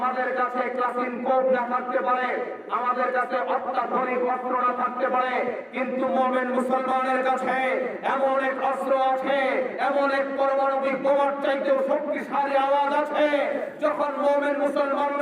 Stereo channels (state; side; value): identical; both; correlation 1.00